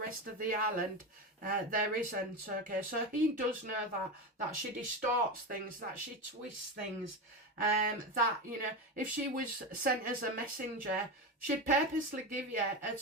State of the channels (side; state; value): both; normal; correlation 0.18